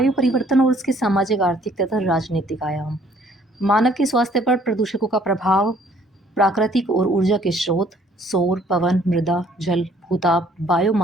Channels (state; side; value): normal; both; correlation 0.60